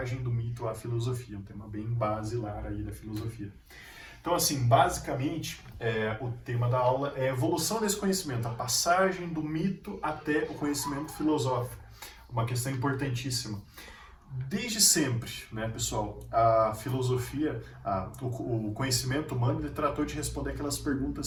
do Mito à Filosofia, um tema bem basilar aí da filosofia. Então, assim, basicamente, o tema da aula é a evolução desse conhecimento, a passagem do mito até o conhecimento filosófico. Uma questão importantíssima. Desde sempre, né, pessoal, a filosofia, o conhecimento humano, ele tratou de responder aquelas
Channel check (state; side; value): identical; both; correlation 1.00